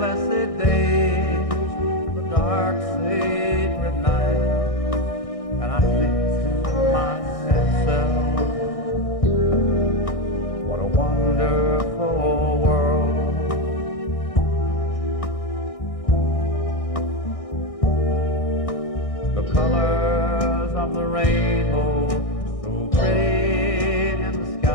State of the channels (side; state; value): right; late; 1.6 ms